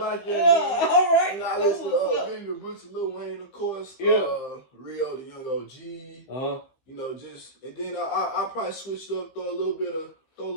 All right. And I listen to Benny the Butcher, Lil Wayne, of course. Yeah. Rio, the Young OG. You know, and then I probably switched up, throw a little bit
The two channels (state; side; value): late; right; 15 ms